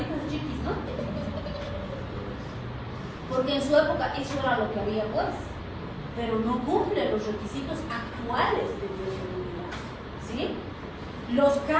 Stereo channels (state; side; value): identical; both; correlation 1.00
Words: chiquis, ¿no? Porque en su época eso era lo que había, pues. Pero no cumple los requisitos actuales de bioseguridad, ¿sí? Los